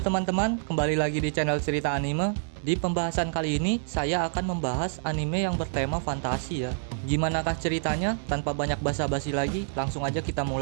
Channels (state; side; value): silent; left; 57 dB below the other